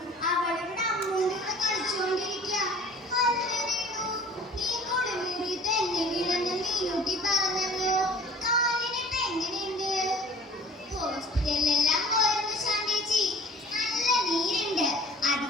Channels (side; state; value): both; normal; correlation 0.47